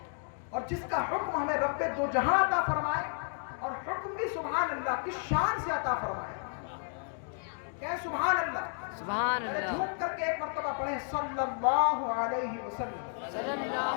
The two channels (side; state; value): right; silent; 56 dB below the other